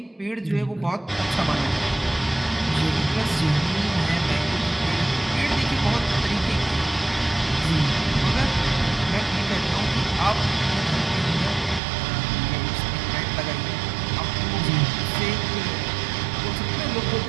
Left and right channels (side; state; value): left; drops out; at 11.8 s